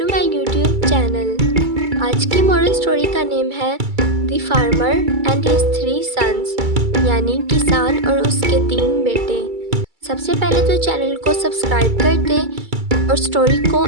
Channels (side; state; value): left; late; 2.3 ms